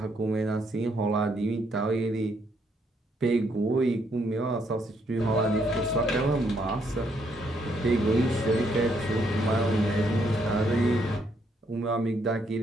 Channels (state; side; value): normal; both; correlation 0.73